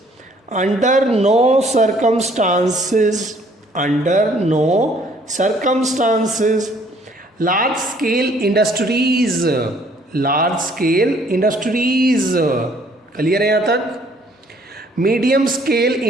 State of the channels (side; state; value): both; normal; correlation 0.61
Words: under no circumstances, under no circumstances, large scale industries, large scale industries, clear है यहाँ तक? Medium scale